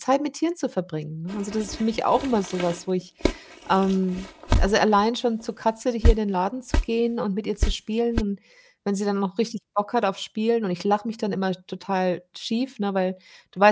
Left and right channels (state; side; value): identical; both; correlation 1.00